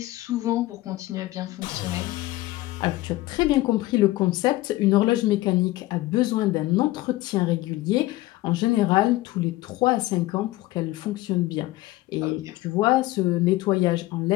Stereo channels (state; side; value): quieter; right; 18.1 dB